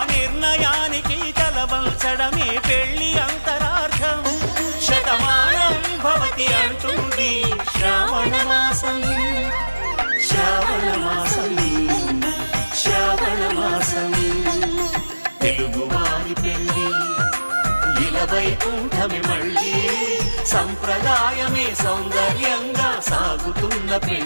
నిర్ణయానికి తలవంచడమే పెళ్లి అంతరార్థం. శతమానం భవతి అంటుంది శ్రావణ మాసం శ్రావణ మాసం శ్రావణ మాసం. తెలుగువారి పెళ్ళి ఇలవై కూటమి మళ్ళీ సంప్రదాయమే సౌందర్యంగా సాగుతున్న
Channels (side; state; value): both; inverted; correlation -1.00